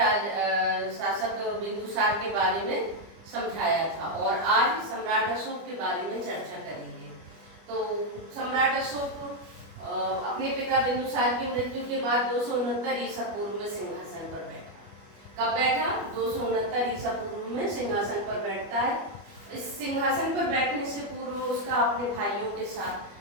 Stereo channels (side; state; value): left; late; 25 ms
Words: शासक बिंदुसार के बारे में समझाया था। और आज सम्राट अशोक के बारे में चर्चा करेंगे। तो सम्राट अशोक अपने पिता बिंदुसार की मृत्यु के बाद 269 ईसा पूर्व में सिंहासन पर बैठा। कब बैठा? 269 ईसा पूर्व में सिंहासन पर बैठता है। इस सिंहासन पर बैठने से पूर्व उसका अपने भाइयों के साथ